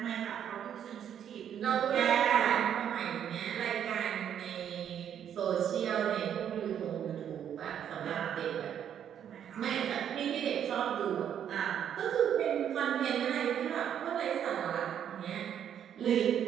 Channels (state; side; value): quieter; left; 9.3 dB